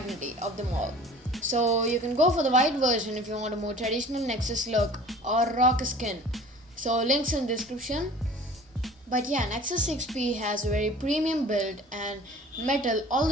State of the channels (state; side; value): normal; both; correlation 0.45